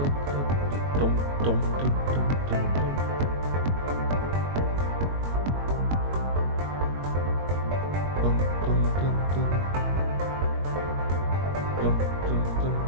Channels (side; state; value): left; late; 21 ms